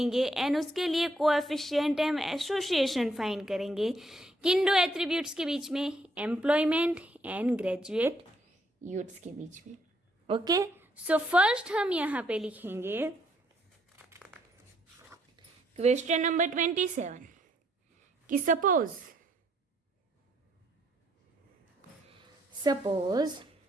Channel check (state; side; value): normal; both; correlation 0.71